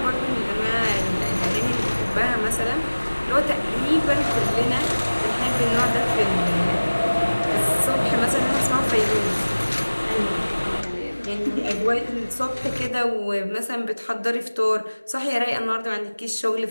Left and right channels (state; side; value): inverted; both; correlation -1.00